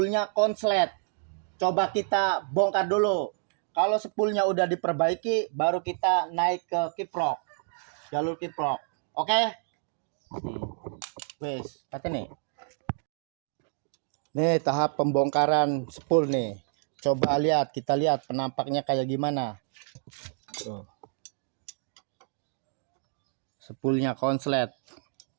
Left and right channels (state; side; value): silent; left; digital silence